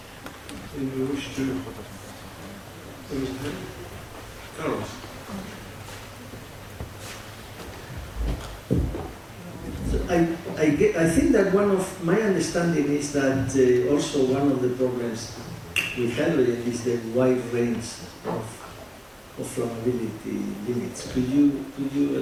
Anyone wish to raise a hand? Carlos. So I think that one of my understanding is that also one of the problems with hydrogen is the wide range of flammability limits. Could you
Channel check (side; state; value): both; identical; correlation 1.00